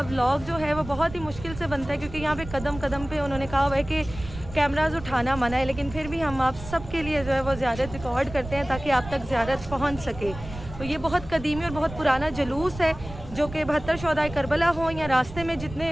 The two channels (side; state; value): right; noise; rumble, 13 dB below the sound